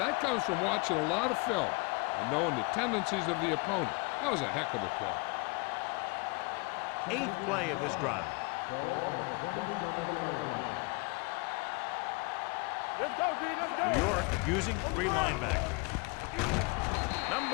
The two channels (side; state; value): right; quieter; 28.9 dB